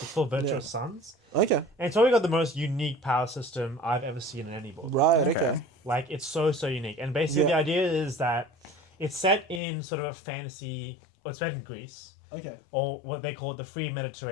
It's called Virtuous Sons, Okay, and it's probably got the most unique power system I've ever seen in any book. right. Okay. Okay. Like it's so unique, and basically Yeah. the idea is that it's set in sort of a fantasy. Well, it's set in Greece, Okay. or what they call it the free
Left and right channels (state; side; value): drops out; right; at 9.6 s